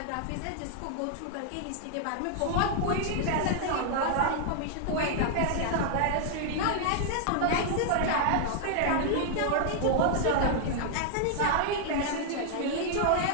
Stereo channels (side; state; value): both; different; correlation -0.01